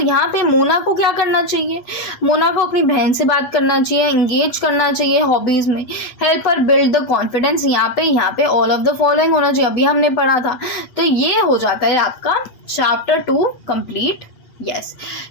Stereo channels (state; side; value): late; right; 8.0 ms